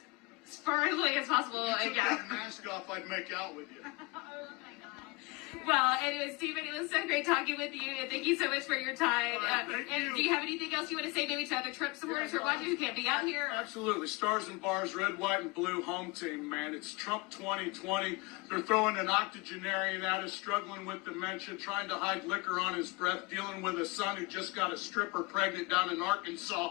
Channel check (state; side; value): quieter; right; 25.6 dB